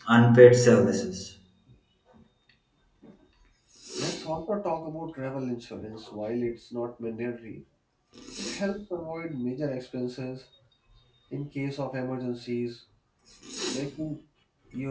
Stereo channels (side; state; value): both; identical; correlation 1.00